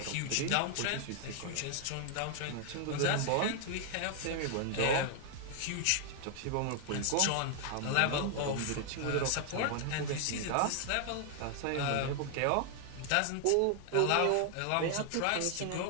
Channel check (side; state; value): both; different; correlation 0.00